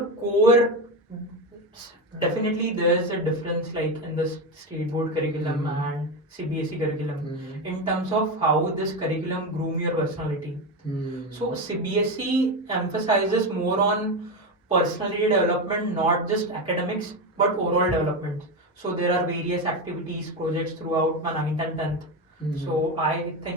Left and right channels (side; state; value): both; normal; correlation 0.15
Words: core, definitely there's a difference like in the state board curriculum and CBSE curriculum in terms of how this curriculum groom your personality. So CBSE emphasizes more on personality development, not just academics but overall development. So there are various activities, projects throughout my 9th and 10th. So I